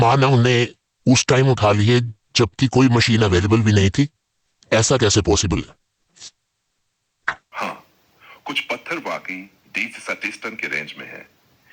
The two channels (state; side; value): identical; both; correlation 1.00